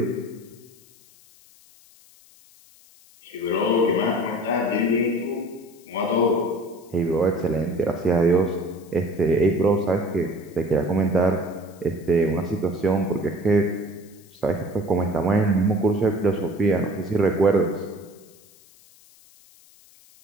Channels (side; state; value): left; noise; hiss, 27 dB below the sound